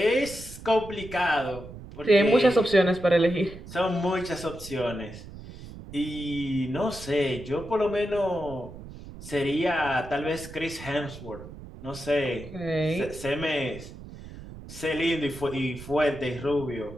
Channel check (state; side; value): noise; right; rumble, 14 dB below the sound